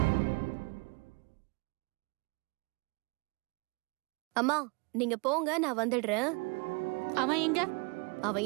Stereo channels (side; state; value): left; quieter; 31.1 dB